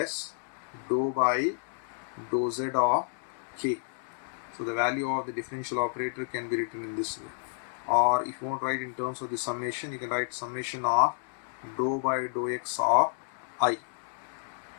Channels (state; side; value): silent; right; 58 dB below the other